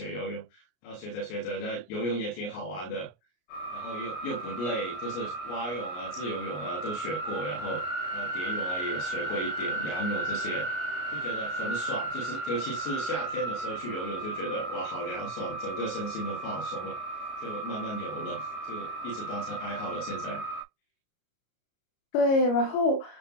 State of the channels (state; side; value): late; right; 33 ms